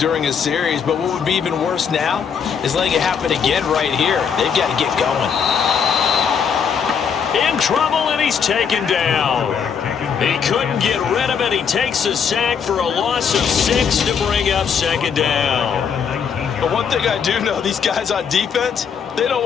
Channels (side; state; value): right; quieter; 6.9 dB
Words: a series, but what would be even worse now is letting it happen again right here. They've got to get going. In trouble, and he's taken down. He couldn't get rid of it. He takes a sack for a loss of 6 to bring up 2nd down. But one thing I do know, these guys on defense, they don't